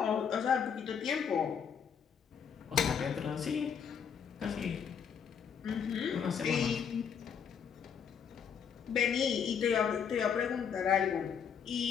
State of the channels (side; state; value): right; quieter; 7.4 dB